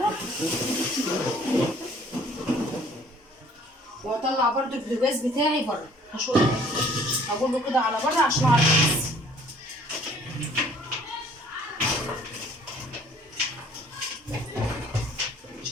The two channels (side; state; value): both; normal; correlation 0.56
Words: وهطلع برده البوتاجاز بتاعي بره. هقول له كده على بره عشان اعرف بس.